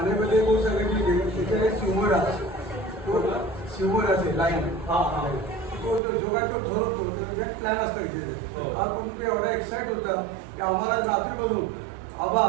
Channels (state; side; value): drops out; left; at 6.0 s